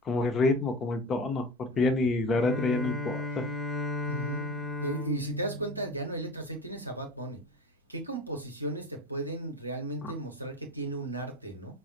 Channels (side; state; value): both; normal; correlation 0.32